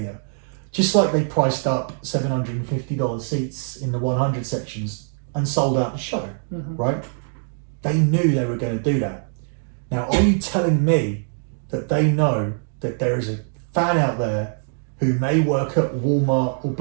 just like they priced up $750 seats in the 100 sections and sold out the show, right? They knew they were going to do that. Now, are you telling me that they know that there is a fan out there who may work at Walmart or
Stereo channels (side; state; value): left; silent; 64 dB below the other